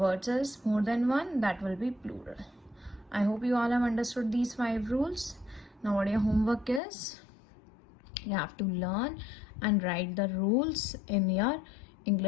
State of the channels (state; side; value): drops out; right; at 6.8 s